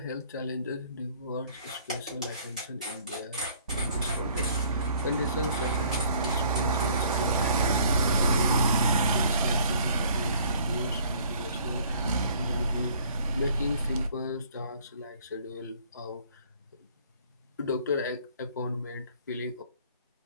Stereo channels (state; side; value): inverted; both; correlation -0.57